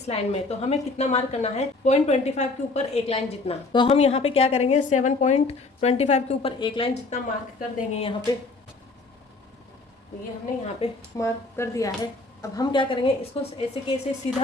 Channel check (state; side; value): quieter; right; 3.4 dB